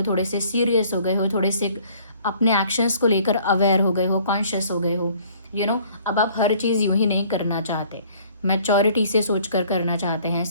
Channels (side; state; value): both; inverted; correlation -0.57